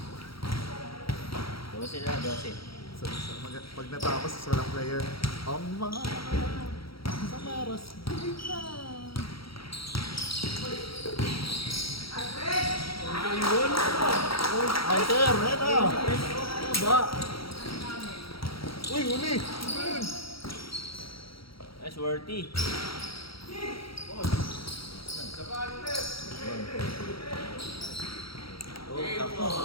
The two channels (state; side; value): late; right; 0.75 ms